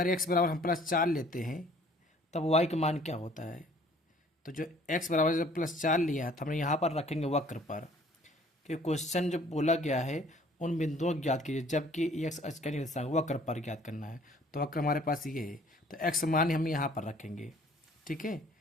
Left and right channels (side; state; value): both; normal; correlation 0.56